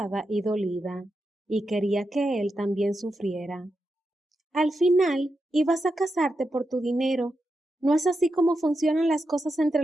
y dolida, y quería que él también sufriera. Al final, ibas a casarte por tu dinero. ¿No es así como funcionan las cosas entre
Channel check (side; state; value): both; normal; correlation 0.87